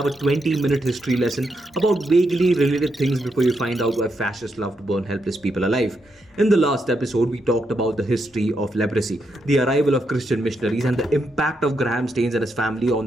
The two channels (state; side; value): normal; both; correlation 0.81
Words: a 20-minute history lesson about vaguely related things before you find out why fascists love to burn helpless people alive. In the last episode, we talked about the history of leprosy, the arrival of Christian missionaries, and the impact of Graham Staines and his family